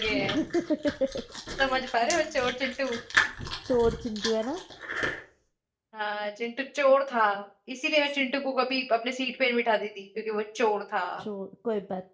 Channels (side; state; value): both; identical; correlation 1.00